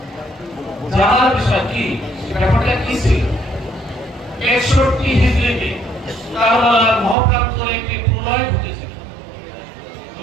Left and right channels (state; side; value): drops out; left; at 7.2 s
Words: জানার বিষয় কি, ব্যাপারটা কি ছিল? 61 হিজরিতে কারবালার মহাপ্রান্তরে একটি প্রলয় ঘটেছিল।